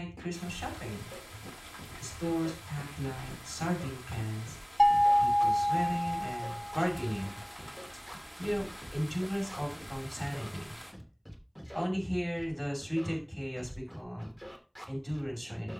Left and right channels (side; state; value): both; identical; correlation 1.00